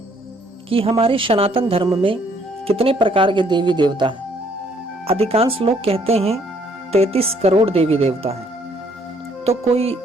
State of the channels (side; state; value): both; normal; correlation 0.65